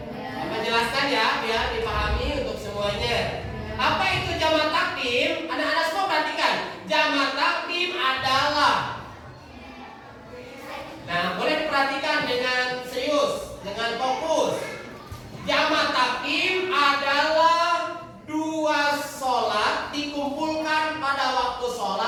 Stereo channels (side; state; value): both; identical; correlation 1.00